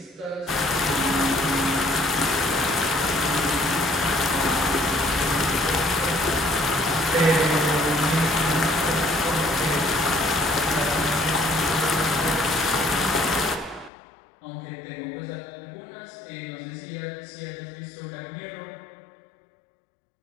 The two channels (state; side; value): drops out; right; at 13.9 s